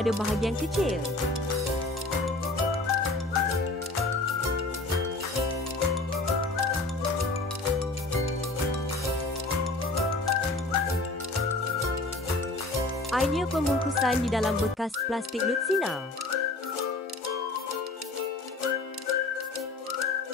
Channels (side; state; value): right; quieter; 3.1 dB